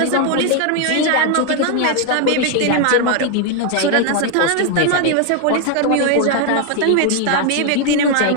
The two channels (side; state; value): both; different; correlation 0.01